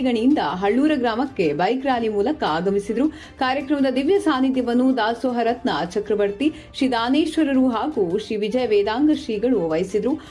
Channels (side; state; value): both; identical; correlation 1.00